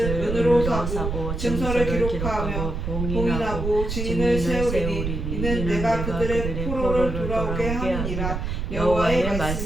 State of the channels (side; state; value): right; noise; rumble, 3 dB below the sound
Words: 은으로 사고 증서를 기록하며 봉인하고 증인을 세우리니 이는 내가 그들의 포로를 돌아오게 하느니라. 여호와의